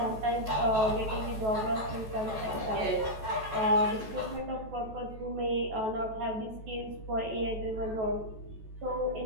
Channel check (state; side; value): late; left; 14 ms